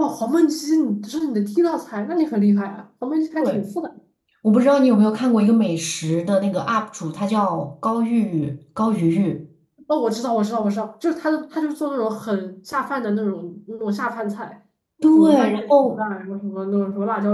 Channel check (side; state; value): both; identical; correlation 1.00